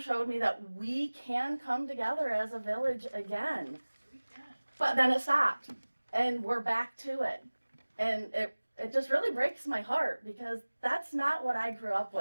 me that we can come together as a village again. But then it stopped, and we're back to it. And it just really breaks my heart because that's not what I grew up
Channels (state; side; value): inverted; both; correlation -1.00